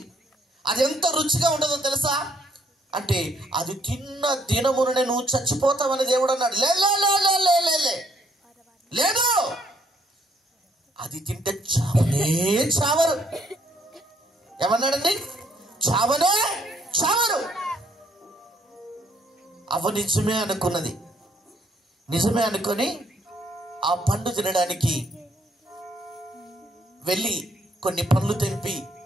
అది ఎంత రుచిగా ఉంటుందో తెలుసా అంటే, అది తిన్న దినముననే నువ్వు చచ్చిపోతావని దేవుడు అన్నాడు. లేదు, అది తింటే చావనే చావరు. ఏమన్నాడండి? చావనే చావరు. అవ్వ నిజమే అనుకున్నది. నిజమే అనుకొని ఆ పండు తినడానికి వెళ్ళి కొన్ని పండ్లు తెంపి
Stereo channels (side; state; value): both; normal; correlation 0.68